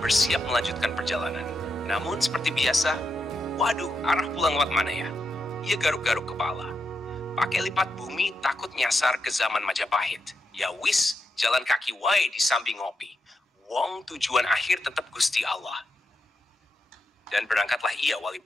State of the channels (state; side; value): normal; both; correlation 0.85